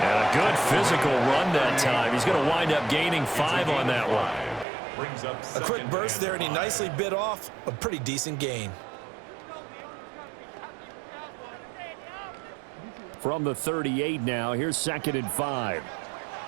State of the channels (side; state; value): left; drops out; at 4.7 s